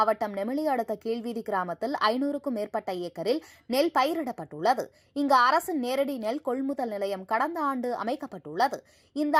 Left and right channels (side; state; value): both; identical; correlation 1.00